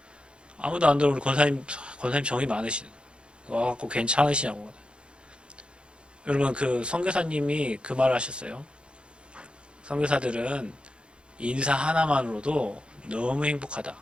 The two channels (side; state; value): left; late; 0.055 ms